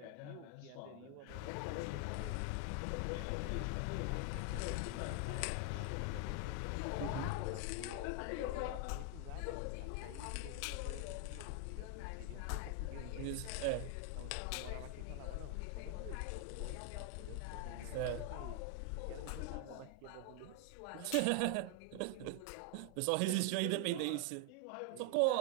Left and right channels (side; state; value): both; different; correlation 0.00